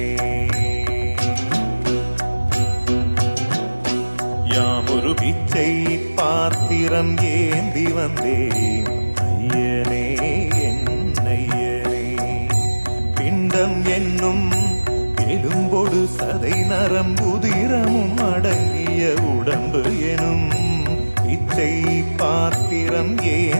யாமொரு பிச்சை பாத்திரம் ஏந்தி வந்தேன் ஐயனே என் ஐயனே. பிண்டம் என்னும் எலும்பொடு சதை நரம்புதிரமும் அடங்கிய உடம்பு எனும் பிச்சை பாத்திரம்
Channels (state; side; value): inverted; both; correlation -1.00